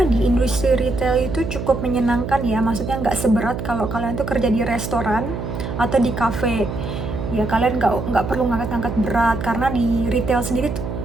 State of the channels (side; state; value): right; noise; hum, 5 dB below the sound